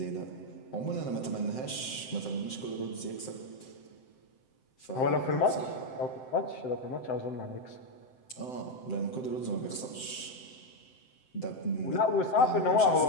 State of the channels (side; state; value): right; late; 7.8 ms